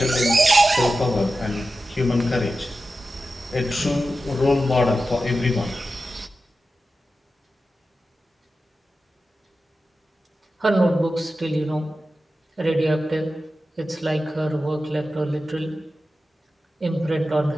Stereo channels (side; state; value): both; normal; correlation 0.92